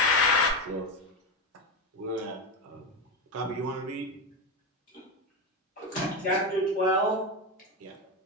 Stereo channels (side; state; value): both; normal; correlation 0.13